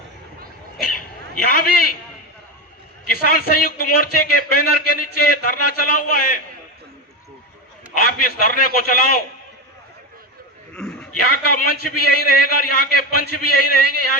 यहां भी किसान संयुक्त मोर्चे के बैनर के नीचे धरना चला हुआ है। आप इस धरने को चलाओ। यहाँ का मंच भी यही रहेगा, यहाँ के पंच भी यही रहेंगे, यहाँ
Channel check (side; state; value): both; normal; correlation 0.17